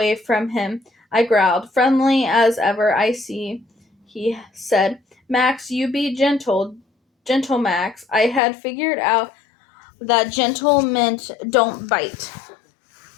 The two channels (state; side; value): drops out; right; at 8.4 s